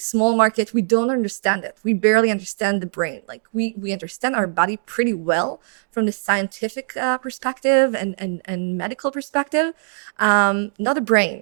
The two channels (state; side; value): silent; left; digital silence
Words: market. We don't understand it. We barely understand the brain. Like we understand our body pretty well from the scientific perspective and medical perspective, not the